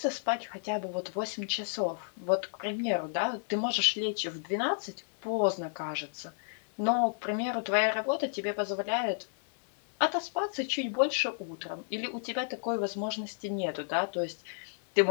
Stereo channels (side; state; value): right; silent; 57 dB below the other